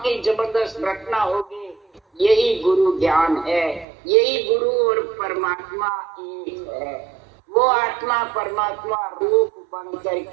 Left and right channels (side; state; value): left; drops out; at 3.9 s